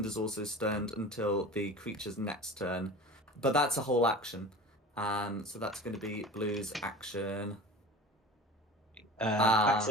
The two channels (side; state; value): both; normal; correlation 0.36